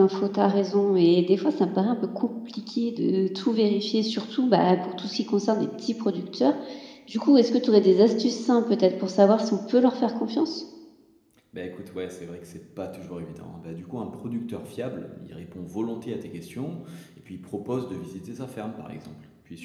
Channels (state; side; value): identical; both; correlation 1.00